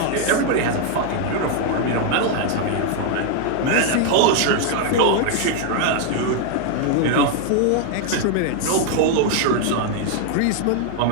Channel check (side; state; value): both; different; correlation 0.00